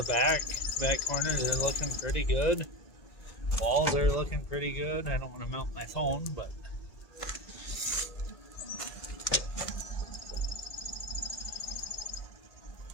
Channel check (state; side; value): late; right; 1.9 ms